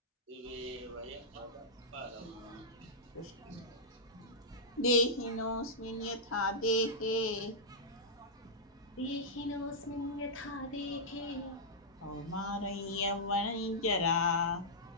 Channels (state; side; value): normal; both; correlation -0.11